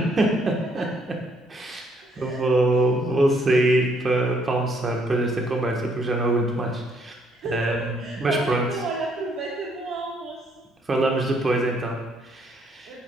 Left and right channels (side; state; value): both; normal; correlation 0.69